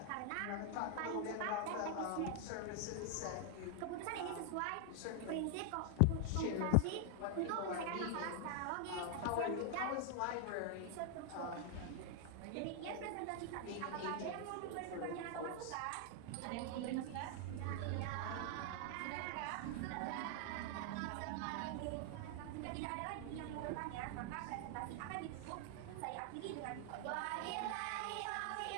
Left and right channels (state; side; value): different; both; correlation 0.00